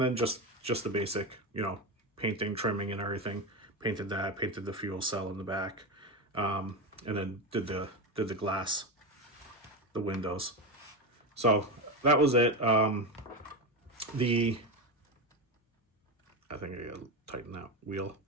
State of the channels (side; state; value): both; normal; correlation 0.16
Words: just the basic, painting, trimming and everything. Painted the fuel cell in the back. And then did the glass, the windows. So that was it. I think I gotta tighten that wheel.